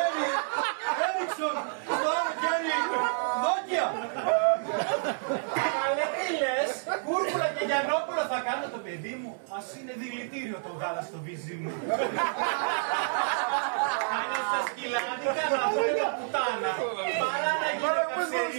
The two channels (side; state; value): left; silent; digital silence